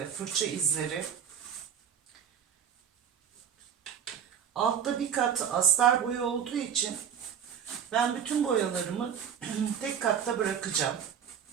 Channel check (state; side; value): quieter; left; 8.2 dB